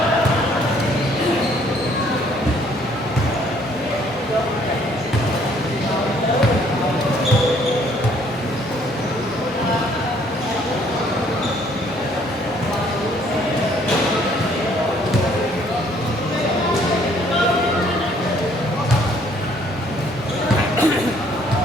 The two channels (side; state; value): both; normal; correlation 0.62